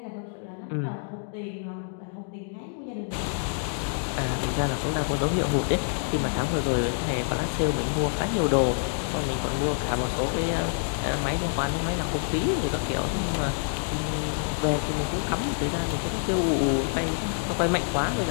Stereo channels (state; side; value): silent; right; digital silence